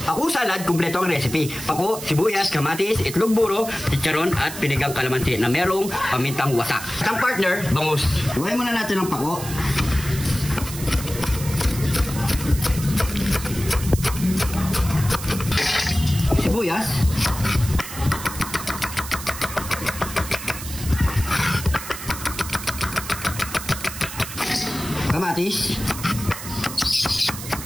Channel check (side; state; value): right; noise; hiss, 10 dB below the sound